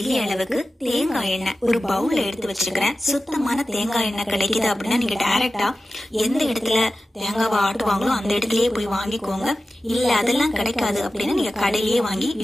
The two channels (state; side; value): normal; both; correlation 0.95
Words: அளவுக்கு தேங்காய் எண்ணெய் ஒரு பவுல்ல எடுத்து வச்சிருக்கிறேன். சுத்தமான தேங்காய் எண்ணெய் கிடைக்குது அப்படின்னா நீங்க டைரக்டா எந்த இடத்துல தேங்காவை ஆட்டுவாங்களோ அந்த இடத்துலயே போய் வாங்கிக்கோங்க. இல்ல அதெல்லாம் கிடைக்காது அப்படின்னா நீங்க கடையிலேயே வாங்கி